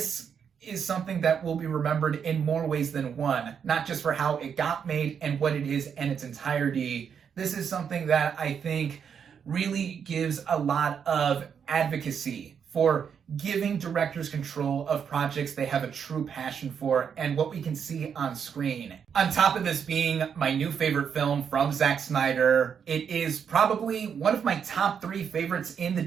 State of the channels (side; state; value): left; quieter; 7.3 dB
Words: is something that will be remembered in more ways than one, not just for how it got made and what it is in its entirety. This is something that I think really gives a lot of advocacy for giving directors control of projects they have a true passion for and what we can see on screen. On top of this being my new favorite film from Zack Snyder, it is probably one of my top 3 favorites in the